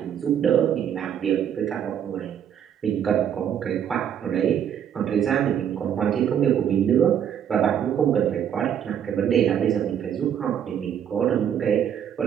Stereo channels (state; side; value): quieter; left; 9.1 dB